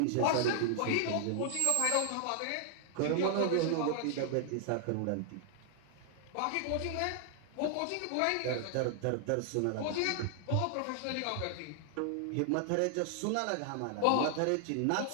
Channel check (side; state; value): both; different; correlation 0.00